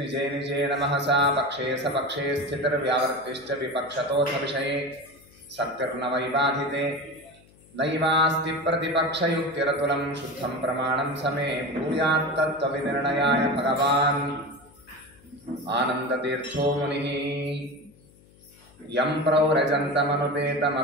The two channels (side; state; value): left; noise; hum, 27 dB below the sound